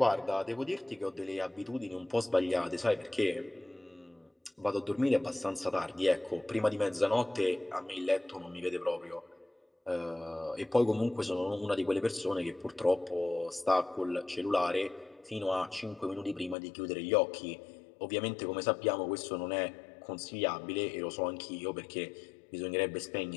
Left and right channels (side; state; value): right; drops out; at 16.6 s